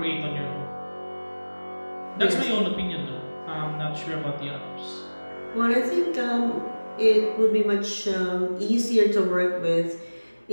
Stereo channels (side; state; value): both; inverted; correlation -1.00